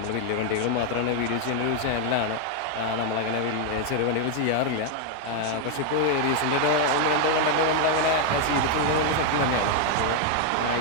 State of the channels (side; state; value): both; different; correlation 0.00